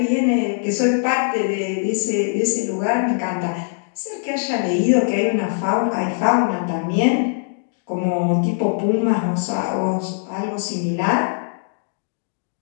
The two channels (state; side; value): silent; right; 65 dB below the other